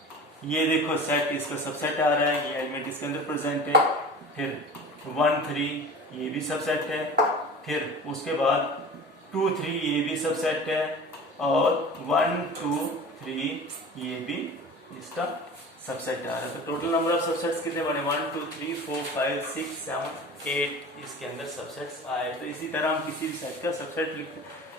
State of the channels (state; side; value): normal; both; correlation 0.38